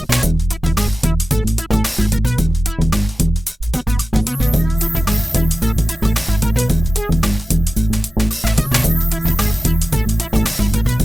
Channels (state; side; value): normal; both; correlation 0.94